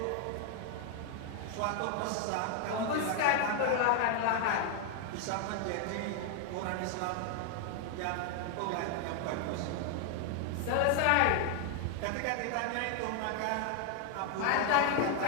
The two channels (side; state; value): both; different; correlation 0.00